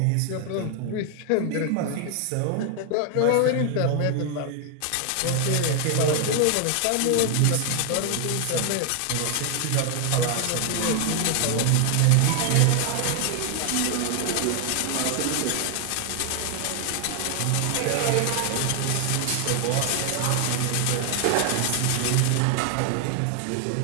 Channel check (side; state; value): both; different; correlation 0.00